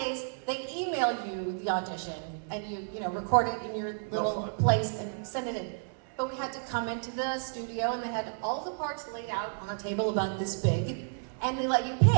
they email you the audition, and you record it in your little place and send it in. But we had to come into the studio, and they had all the parts laid out on a table about this big, and they let you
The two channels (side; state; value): left; silent; 57 dB below the other